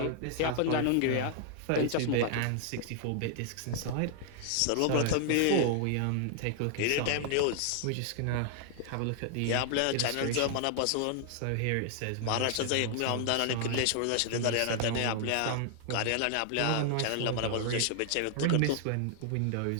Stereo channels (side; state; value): both; different; correlation -0.01